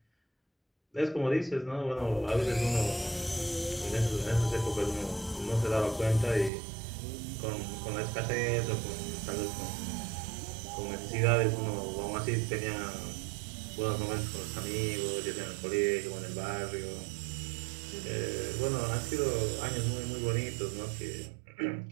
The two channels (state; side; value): drops out; left; at 6.5 s